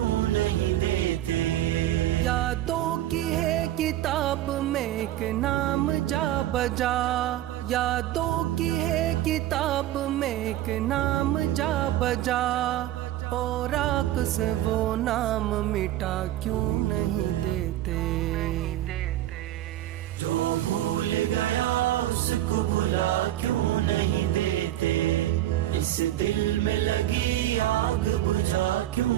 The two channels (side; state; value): left; quieter; 13.8 dB